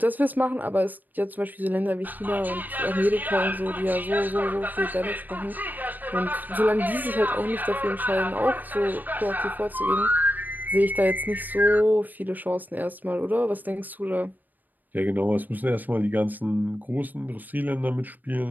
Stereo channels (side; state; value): left; late; 0.086 ms